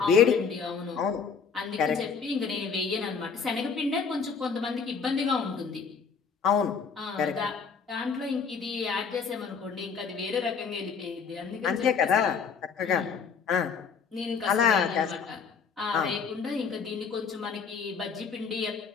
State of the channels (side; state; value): right; quieter; 5.9 dB